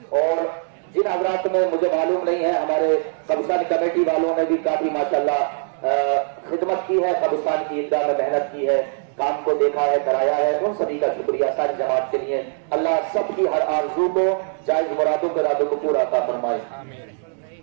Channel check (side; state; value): left; silent; 63 dB below the other